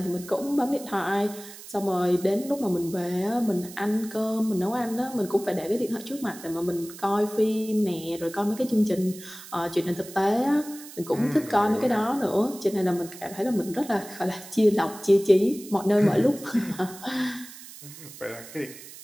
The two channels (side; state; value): right; noise; hiss, 16 dB below the sound